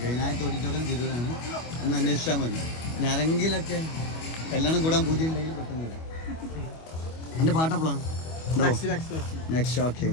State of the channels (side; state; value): right; late; 25 ms